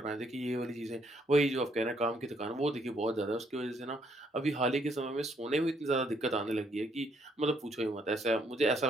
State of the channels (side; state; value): both; normal; correlation 0.70